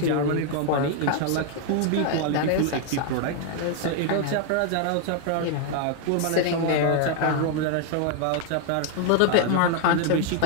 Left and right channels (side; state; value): both; different; correlation 0.00